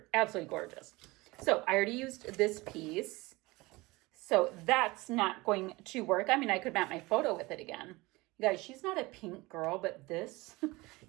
Absolutely gorgeous. So I already used this piece. So that's not going to work. I mean, I could map my photo with it again. You guys, she's not a pink girl, but this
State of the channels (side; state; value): left; quieter; 22.1 dB